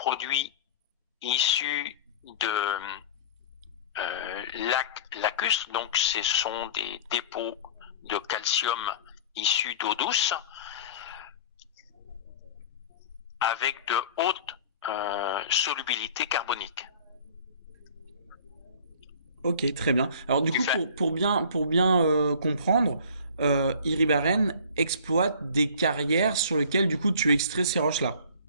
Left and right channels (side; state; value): both; inverted; correlation -0.43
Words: issu de lac lacustre, donc ce sont des dépôts de calcium issus d'eau douce, avec de hautes solubilité carbonique. Ok, très bien. Alors du coup, pour bien comprendre, Iribaren exploite des carrières sur lesquelles du coup tu extrais ces roches-là.